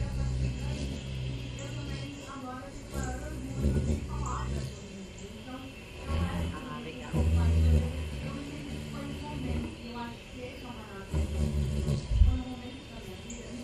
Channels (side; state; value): both; identical; correlation 1.00